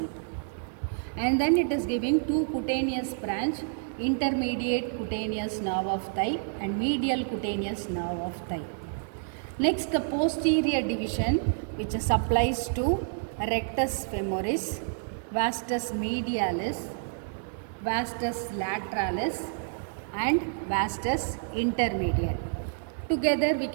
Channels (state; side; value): silent; left; digital silence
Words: and then it is giving two cutaneous branch, intermediate cutaneous nerve of thigh and medial cutaneous nerve of thigh. Next, the posterior division which supplies to rectus femoris, vastus medialis, vastus lateralis and vastus intermediate. Together we